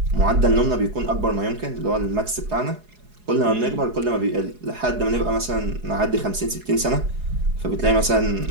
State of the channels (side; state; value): left; late; 4.8 ms